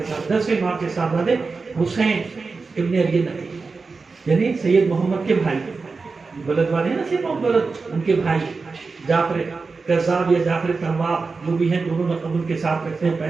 ساتھ 10ویں امام کے صاحبزادے حسین ابن علی نقی, یعنی سید محمد کے بھائی, بلد والے ہیں نا سید محمد بلد, ان کے بھائی جعفر کذاب یا جعفر تواب جو بھی ہیں, دونوں لقب ان کے ساتھ رکھتے ہیں.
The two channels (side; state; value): left; quieter; 4.3 dB